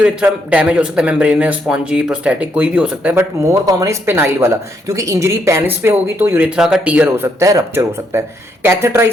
डैमेज हो सकता है, मेम्ब्रेनस, स्पॉन्जी, प्रोस्थेटिक, कोई भी हो सकता है, but more common is penile वाला, क्योंकि इंजरी पेनिस पे होगी तो यूरेथ्रा का टीयर हो सकता है, रप्चर हो सकता है।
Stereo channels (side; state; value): both; normal; correlation 0.75